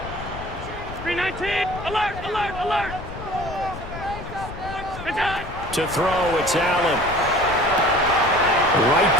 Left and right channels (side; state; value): left; noise; rumble, 11 dB below the sound